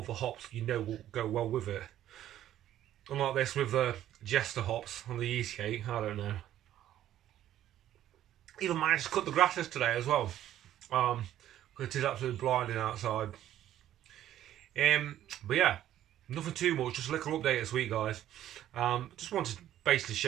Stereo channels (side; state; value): left; quieter; 12.2 dB